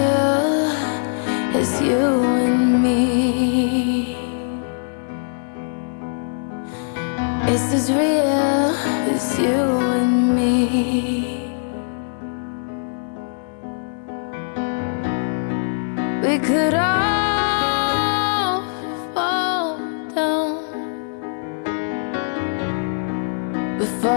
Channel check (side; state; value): right; silent; digital silence